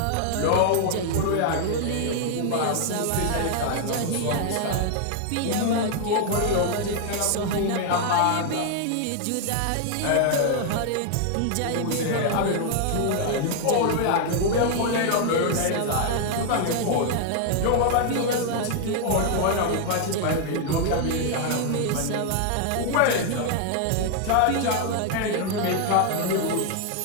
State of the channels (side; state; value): both; different; correlation 0.00